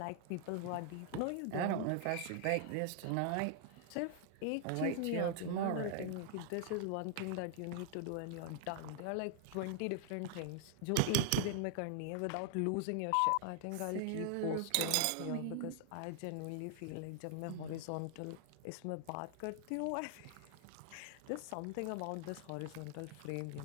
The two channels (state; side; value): different; both; correlation 0.00